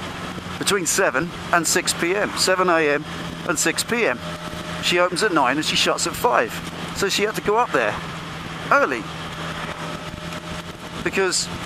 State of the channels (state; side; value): identical; both; correlation 1.00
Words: between 7 and 6 p.m, 7 a.m. and 6 p.m. She opens at 9 and she shuts at 5. So she had to go up there early, because